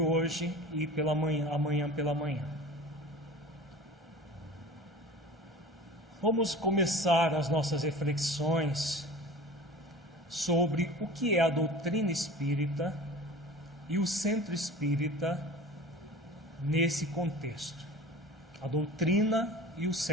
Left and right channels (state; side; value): normal; both; correlation 0.38